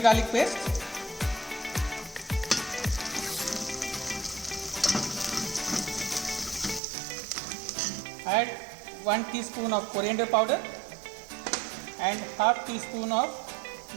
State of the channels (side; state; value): left; drops out; at 6.8 s